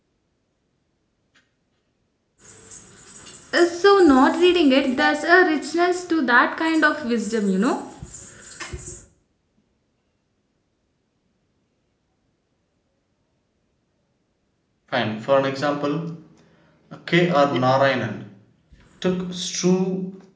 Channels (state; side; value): identical; both; correlation 1.00